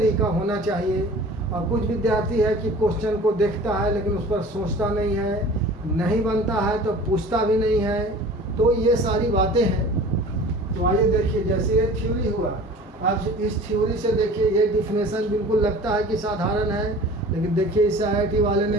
होना चाहिए। और कुछ विद्यार्थी है कि क्वेश्चन को देखता है लेकिन उस पर सोचता नहीं है, नहीं बनता है तो पूछता भी नहीं है। तो ये सारी बातें हैं। तो आइए देखिए, जैसे ये थ्योरी हुआ, अब इस थ्योरी से देखिए ये डिफिनेशन बिल्कुल लगता है कि साधारण है, लेकिन देखिए इस IIT वाले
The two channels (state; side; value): normal; both; correlation 0.43